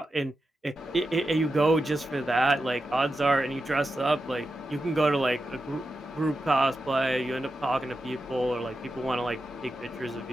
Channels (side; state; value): both; normal; correlation 0.90